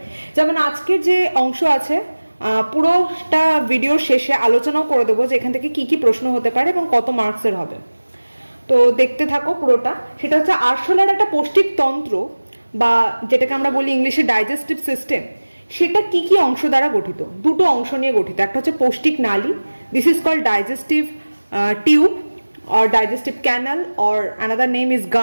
যেমন আজকের যে অংশ আছে পুরোটা ভিডিওর শেষে আলোচনাও করে দেবো যে এখান থেকে কি কি প্রশ্ন হতে পারে এবং কত মার্কসের হবে। তো দেখতে থাকো পুরোটা। সেটা হচ্ছে আরশোলার একটা পৌষ্টিকতন্ত্র বা যেটাকে আমরা বলি ইংলিশে ডাইজেস্টিভ সিস্টেম, সেটা কি কি অংশ দ্বারা গঠিত। দুটো অংশ নিয়ে গঠিত, একটা হচ্ছে পৌষ্টিক নালী, this is called digestive tube or digestive canal or another name is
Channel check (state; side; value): inverted; both; correlation -1.00